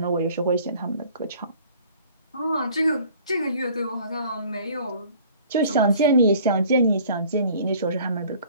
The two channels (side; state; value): both; inverted; correlation -0.52